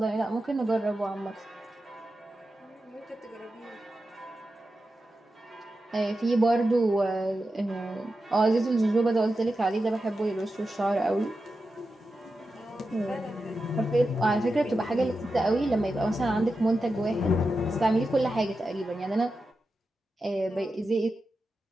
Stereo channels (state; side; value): normal; both; correlation 0.91